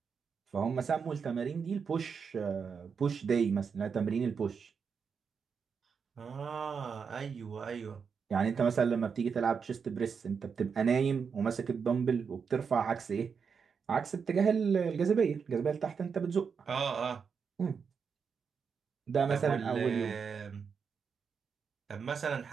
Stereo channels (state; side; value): quieter; left; 6.1 dB